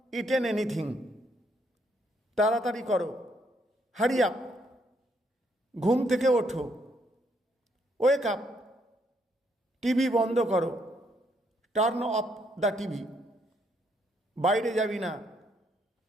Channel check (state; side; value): normal; both; correlation 0.72